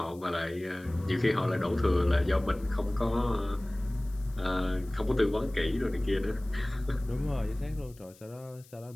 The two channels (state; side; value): noise; left; hiss, 25 dB below the sound